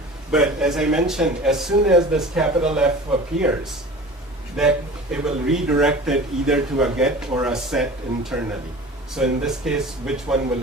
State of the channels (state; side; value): normal; both; correlation 0.39